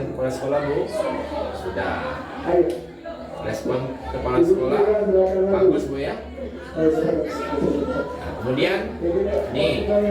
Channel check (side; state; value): both; identical; correlation 1.00